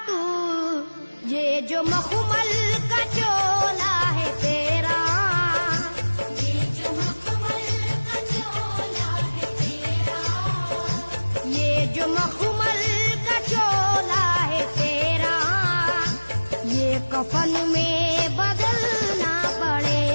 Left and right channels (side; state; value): both; inverted; correlation -1.00